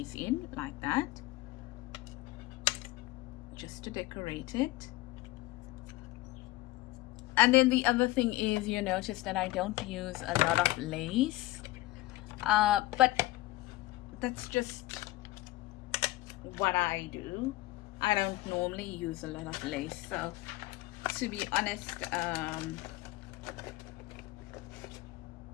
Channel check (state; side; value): quieter; right; 18.6 dB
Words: in like that, just to decorate it. And then the other thing is, you notice that I don't use a lot of lace, but that's just what I do. I don't normally use a lot of lace, so to be honest,